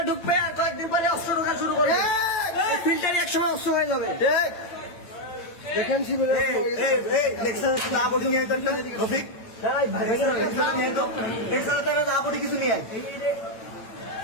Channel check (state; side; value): late; right; 9.0 ms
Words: ঢুকবে আর কয়েকদিন পরে অস্ত্র ঢোকা শুরু করবে। ফিল্টারই একসময় অস্ত্র হয়ে যাবে। দেখেন কিছু